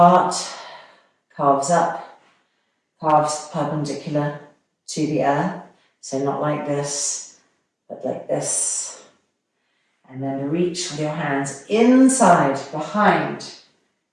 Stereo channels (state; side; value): identical; both; correlation 1.00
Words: calves up, calves perpendicular to the earth. So not like this, but like this. And then reach with your hands inside, behind,